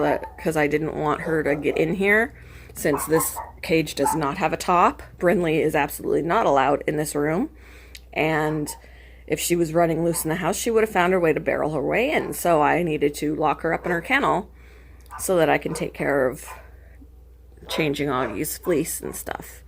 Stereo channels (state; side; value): identical; both; correlation 1.00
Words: because I didn't want her to get in here since this cage does not have a top. Brinley is absolutely not allowed in this room. And if she was running loose in the house, she would have found her way to barrel her way in. So I needed to lock her up in her kennel so that I can take care of changing Augie's fleece and stuff.